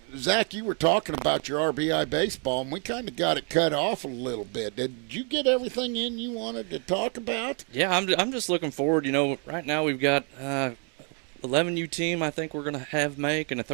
Zach, you were talking about your RBI baseball, and we kind of got it cut off a little bit. Did you get everything in you wanted to talk about? Yeah, I'm just looking forward. You know, right now we've got 11U team I think we're going to have make and a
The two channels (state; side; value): quieter; left; 39.6 dB